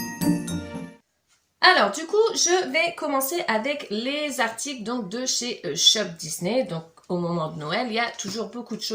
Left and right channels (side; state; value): both; identical; correlation 1.00